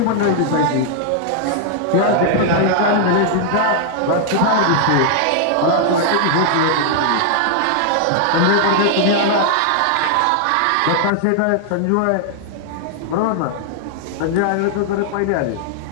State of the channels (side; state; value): both; different; correlation -0.01